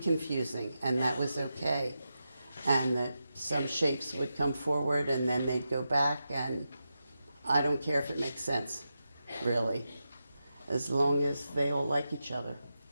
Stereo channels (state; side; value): inverted; both; correlation -0.89